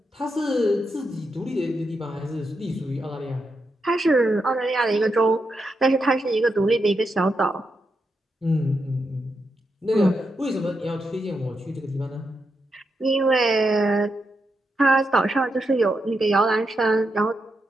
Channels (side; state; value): both; normal; correlation 0.84